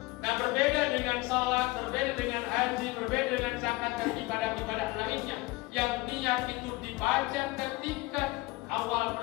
Nah, berbeda dengan sholat, berbeda dengan haji, berbeda dengan zakat dan ibadah-ibadah lainnya, yang niat itu dibaca ketika awal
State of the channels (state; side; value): quieter; right; 21.7 dB